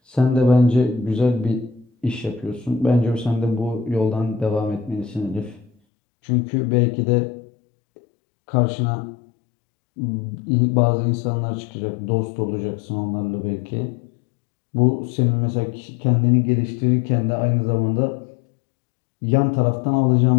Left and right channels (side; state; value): right; drops out; at 5.7 s